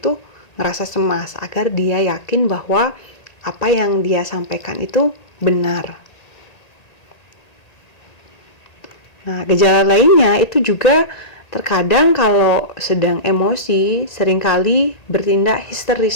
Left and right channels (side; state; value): right; late; 1.8 ms